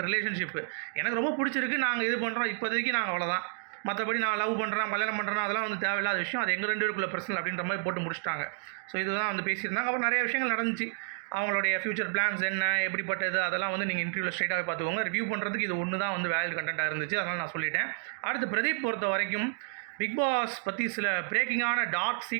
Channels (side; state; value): left; silent; 58 dB below the other